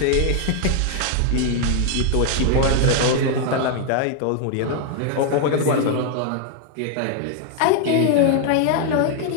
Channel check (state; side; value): different; both; correlation 0.00